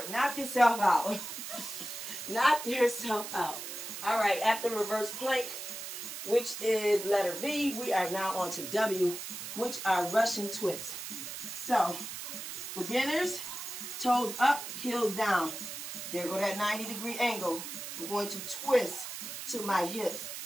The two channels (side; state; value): right; noise; hiss, 8 dB below the sound